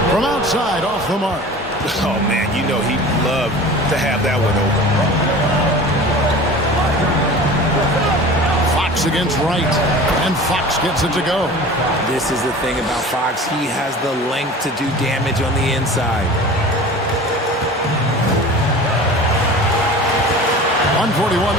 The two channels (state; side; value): normal; both; correlation 0.38